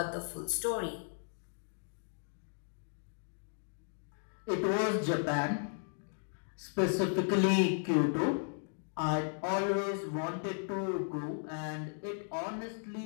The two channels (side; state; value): right; silent; digital silence